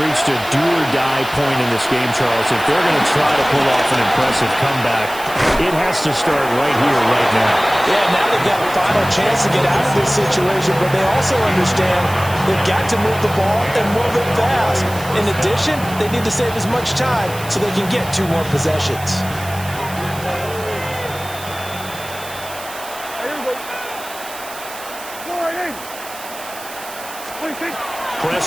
a do-or-die point in this game, Charles. If they're going to try to pull off an impressive comeback, it has to start right here, right now. Yeah, now they've got a final chance to get out of this situation, but they also understand they've got to move the ball and move it fast. In addition, they need to save as much time so they can get 2 more possessions.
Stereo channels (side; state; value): right; noise; hiss, 14 dB below the sound